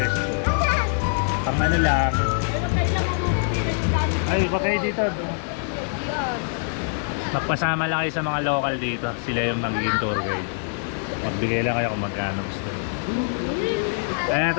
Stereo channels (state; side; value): silent; right; digital silence